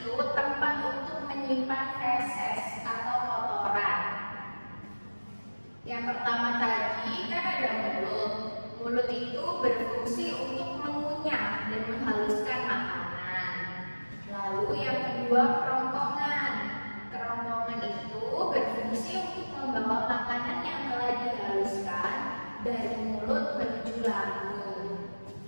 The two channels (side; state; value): both; inverted; correlation -1.00